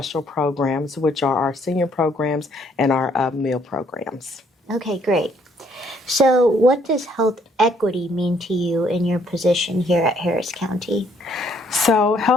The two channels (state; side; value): normal; both; correlation 0.66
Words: programs, which are our senior programs and our meal programs. Okay, great. So what does health equity mean to you in your position here at Harris County? So